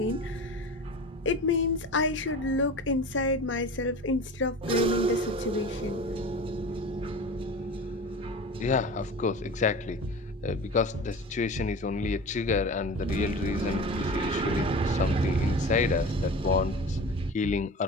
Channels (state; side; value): normal; both; correlation 0.34